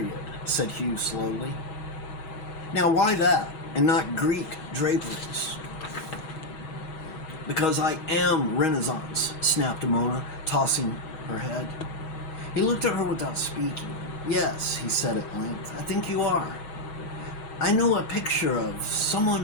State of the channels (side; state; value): right; late; 6.3 ms